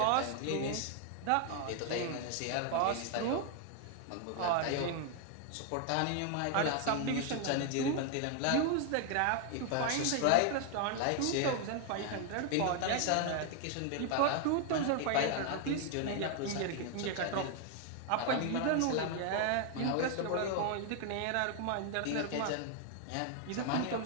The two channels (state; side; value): different; both; correlation 0.00